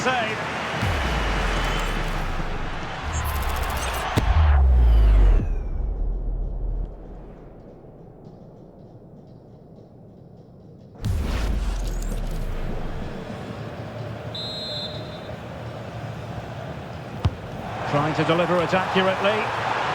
Trying to deliver it accurately.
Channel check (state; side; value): identical; both; correlation 1.00